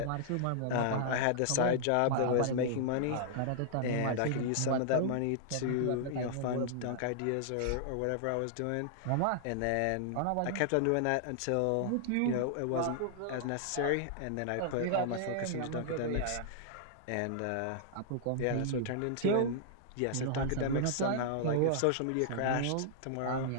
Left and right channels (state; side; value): different; both; correlation -0.01